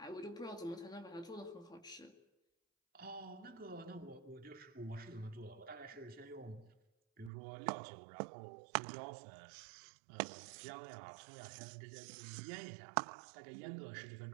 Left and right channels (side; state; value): left; drops out; at 7.3 s